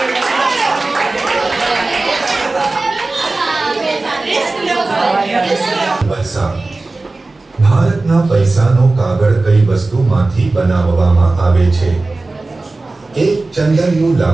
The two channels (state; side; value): quieter; left; 3.3 dB